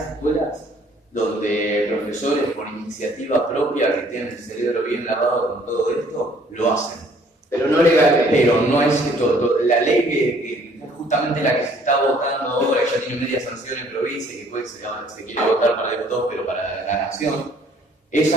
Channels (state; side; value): normal; both; correlation 0.59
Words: escuelas donde profesores por iniciativa propia que tienen el cerebro bien lavado con todo esto, lo hacen. Pero no legalmente. Pero no es esto, la ley que es justamente la que se está votando ahora, que ya tiene media sanción en provincia y que después se quiere votar para diputados, pero para la nación,